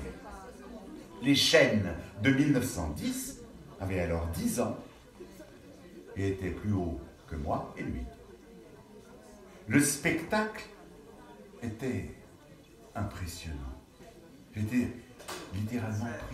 Les chênes de 1910 avaient alors 10 ans et étaient plus hauts que moi et lui. Le spectacle était impressionnant. J'étais littéralement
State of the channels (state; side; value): identical; both; correlation 1.00